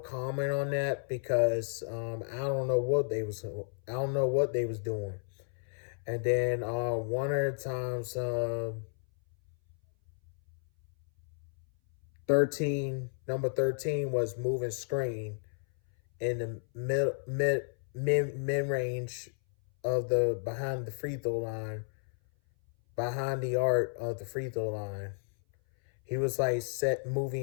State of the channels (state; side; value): silent; right; 56 dB below the other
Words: on that because I don't know what they was doing. And then one of the times 13 was moving screen in the mid range of the behind the free throw line, behind the arc of the free throw line. He was like set